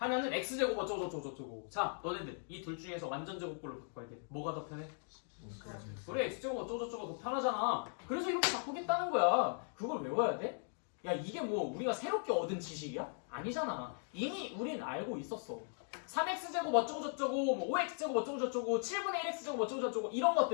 x제곱 어쩌고 저쩌고 저쩌고. 자, 너네들 이 둘 중에서 완전제곱꼴로 바꿔야 돼. 뭐가 더 편해? 그래, x제곱 어쩌고 저쩌고 더 편하잖아. 그래서 이렇게 바꾸겠다는 거야. 그걸 외워야 돼? 야, 이게 뭐 우리가 새롭게 얻은 지식이야? 아니잖아. 이미 우린 알고 있었어. 3x제곱 어쩌고 저쩌고, 뭐 5x제곱 어쩌고 저쩌고, 7분의 1x제곱 어쩌고 저쩌고 이런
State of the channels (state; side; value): silent; right; 52 dB below the other